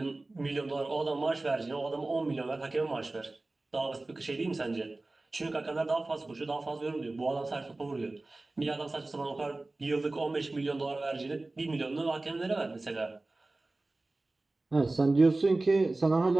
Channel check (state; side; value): quieter; left; 3.0 dB